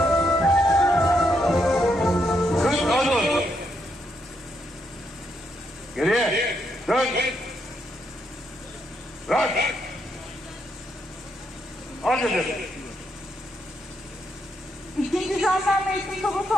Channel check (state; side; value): normal; both; correlation 0.78